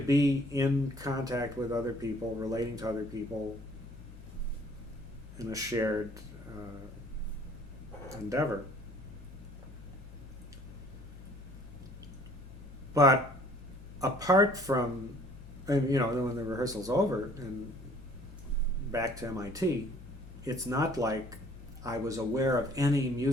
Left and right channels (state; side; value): noise; left; hum, 15 dB below the sound